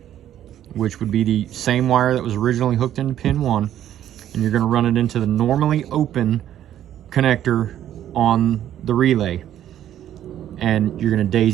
which would be the same wire that was originally hooked into pin 1, and you're going to run it into the normally open connector on the relay. And you're going to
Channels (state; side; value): quieter; left; 11.3 dB